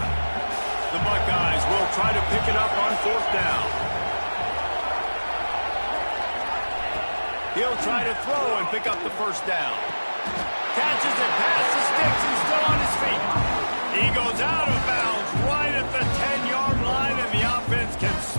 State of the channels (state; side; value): inverted; both; correlation -1.00